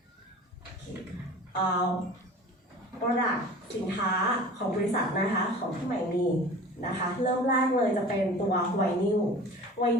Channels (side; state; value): both; normal; correlation 0.40